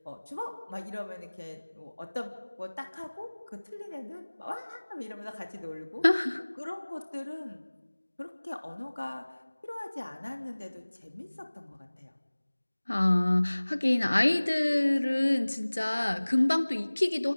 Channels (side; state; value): both; inverted; correlation -1.00